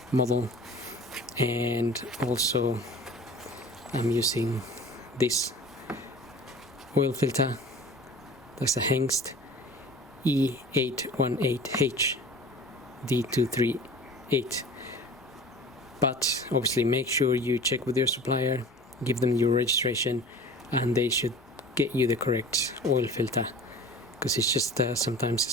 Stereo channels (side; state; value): both; normal; correlation 0.41